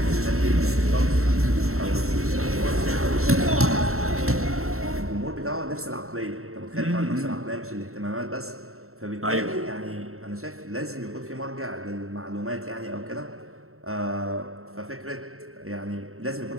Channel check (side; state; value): left; late; 0.63 ms